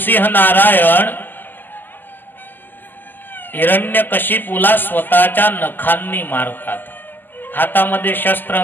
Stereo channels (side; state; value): right; late; 0.089 ms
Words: नारायण हिरण्यकशिपूला स्वतःच्या नखांनी मारतात. हातामध्ये शस्त्र